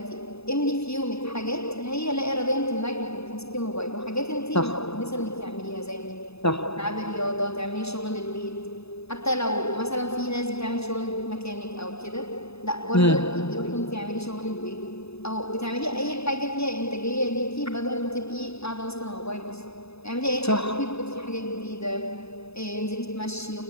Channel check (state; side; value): late; right; 0.79 ms